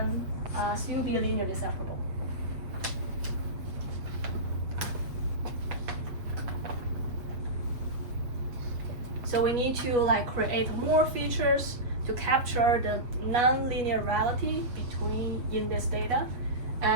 still be linearly separable. So we need to like create more features to capture the non-linear reality in this data,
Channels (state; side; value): late; left; 7.8 ms